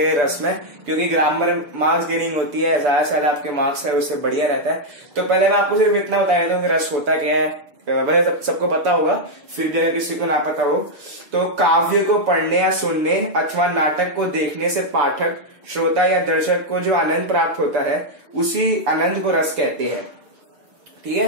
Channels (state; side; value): late; left; 6.9 ms